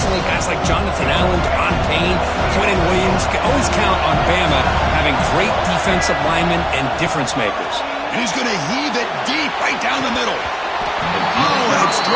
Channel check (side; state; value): both; identical; correlation 1.00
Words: guys like Jonathan Allen, Don Payne, Quentin Williams. Can always count on Bama having great defensive linemen and difference makers. And he's going to heave it deep right down the middle. Oh, and it's